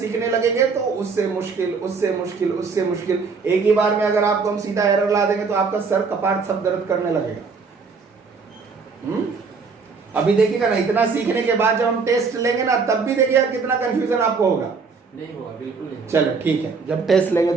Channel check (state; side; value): quieter; left; 4.9 dB